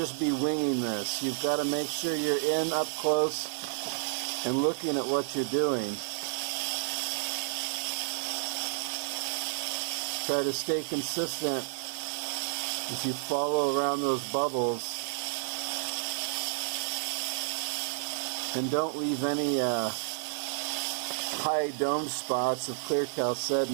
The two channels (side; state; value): left; silent; 57 dB below the other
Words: be winging this. You've got to make sure you're in up close and looking at what you're doing. Try to stay consistent as you follow around those bubbles, and don't leave any high dome spots of clear